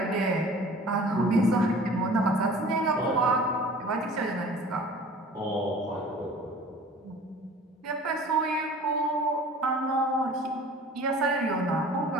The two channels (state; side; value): normal; both; correlation 0.45